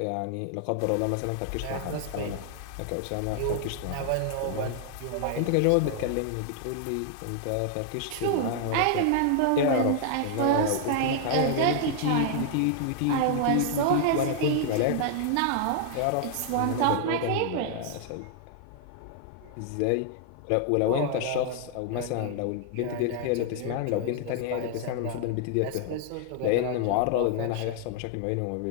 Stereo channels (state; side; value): different; both; correlation 0.00